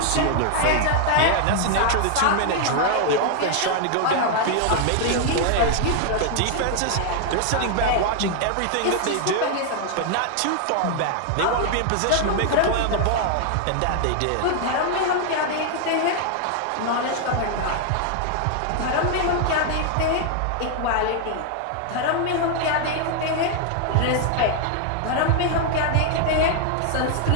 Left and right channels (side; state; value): both; different; correlation 0.00